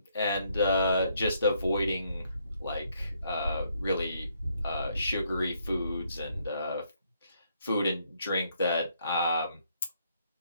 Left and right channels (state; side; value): inverted; both; correlation -0.72